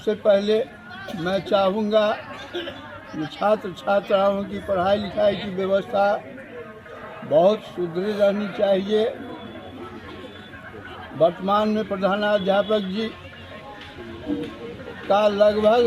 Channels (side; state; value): both; identical; correlation 1.00